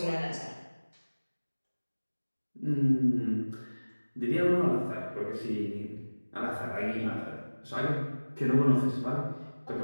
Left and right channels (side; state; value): both; inverted; correlation -1.00